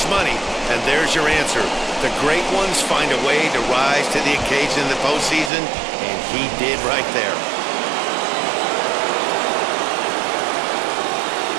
money, and there's your answer. The great ones find a way to rise to the occasion in the postseason, and he did right there.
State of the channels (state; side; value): drops out; left; at 5.5 s